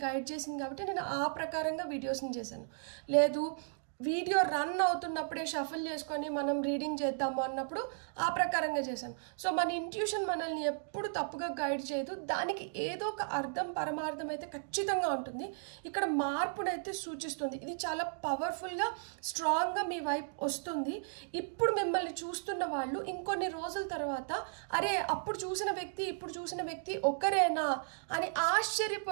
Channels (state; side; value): silent; left; digital silence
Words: గైడ్ చేసింది కాబట్టి నేను ఆ ప్రకారంగా వీడియోస్ని చేశాను। లేదు వీడియో రన్ అవుతున్నప్పుడే షఫల్ చేసుకొని మనం రీడింగ్ చేద్దాము అన్నప్పుడు ఆ ప్రకారంగా చేశాను। సో మన ఇంట్యూషన్ మనల్ని ఎప్పుడు తప్పుగా గైడ్ చేయదు, దానికి ఏదో ఒక అర్థం పరమార్థం అయితే ఖచ్చితంగా ఉంటుంది। ఇక్కడ మార్పునైతే సూచిస్తుంది, ఇది చాలా పవర్ఫుల్గా స్ట్రాంగ్గా మీ వైపు వస్తుంది। ఇప్పుడు మిమ్మల్ని చూస్తున్న వాళ్ళు ఇంకొన్ని రోజుల తర్వాత అరే అప్పుడు చూసిన వ్యక్తి ఇప్పుడు చూసిన వ్యక్తి ఒకరేనా అని